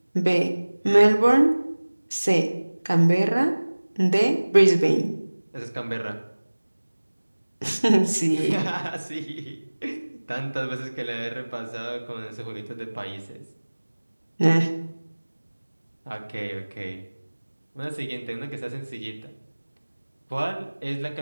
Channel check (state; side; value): inverted; both; correlation -1.00